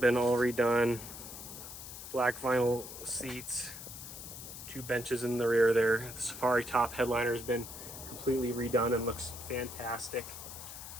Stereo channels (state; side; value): noise; left; hiss, 11 dB below the sound